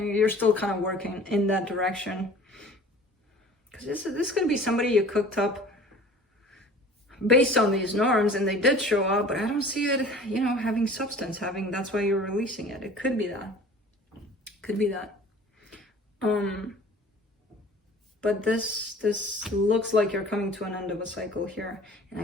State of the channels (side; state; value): both; normal; correlation 0.45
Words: still kind of working in that direction, because this is going to be somebody you cooked up based on these norms, and they did show up, but I don't see it, you know, having substance, that's why you're releasing it. It could be that. But this looks like you're coming to an end of a cycle here. And